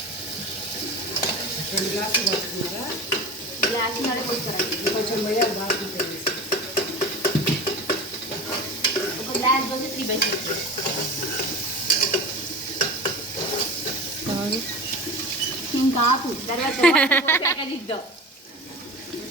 గ్లాస్ నడ కొంచెం పోయా బాగా ఒక గ్లాస్ పోసి 3/6. ఇంకా ఆపు, తర్వాత ఇద్దాం.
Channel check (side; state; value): both; normal; correlation 0.32